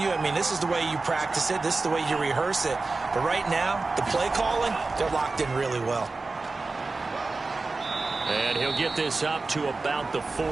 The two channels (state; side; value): quieter; left; 3.7 dB